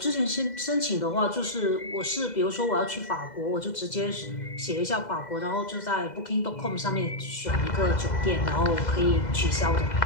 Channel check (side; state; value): right; late; 2.0 ms